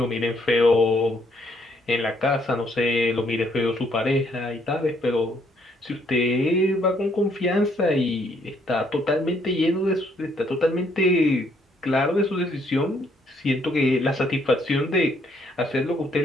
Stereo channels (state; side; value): normal; both; correlation 0.69